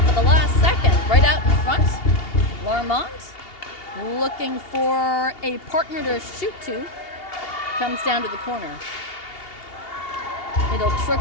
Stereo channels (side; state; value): right; late; 2.8 ms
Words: at the last second. Right out in front, Larmont looking for a partner to shoot to. Comes down to the corner. It'll